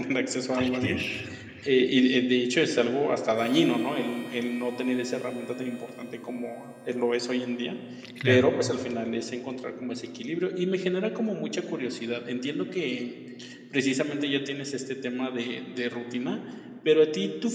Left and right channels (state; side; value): identical; both; correlation 1.00